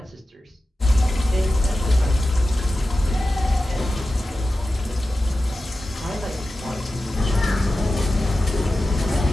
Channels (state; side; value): normal; both; correlation 0.93